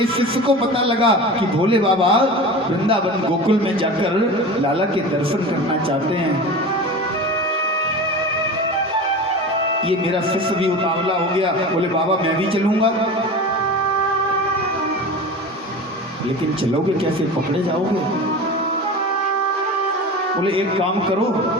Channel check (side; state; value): both; normal; correlation 0.32